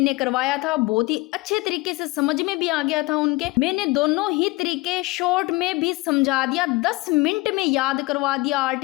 करवाया था, बहुत ही अच्छे तरीके से समझ में भी आ गया था उनके। मैंने दोनों ही तरीके शॉर्ट में भी समझा दिया, 10 मिनट में याद करवा दिया,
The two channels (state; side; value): quieter; right; 22.9 dB